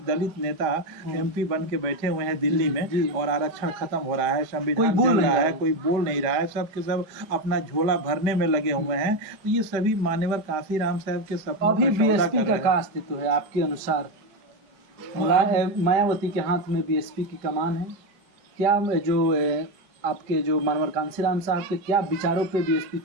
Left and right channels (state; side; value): late; left; 5.1 ms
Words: दलित नेता एमपी बन के बैठे हुए हैं दिल्ली में, और आरक्षण खत्म हो रहा है, संविधान चल रहा है, कोई बोल नहीं रहा है, सब के सब अपना झोला भरने में लगे हुए हैं। तो ये सभी मान्यवर कांसीराम साहब के सपनों अभी बीएसपी का अस्तित्व है आपके अनुसार? मायावती के हाथ में बीएसपी की कमान है क्या? जो आपके जो मानवर कांसीराम साहब के क्या विचारों पे बीएसपी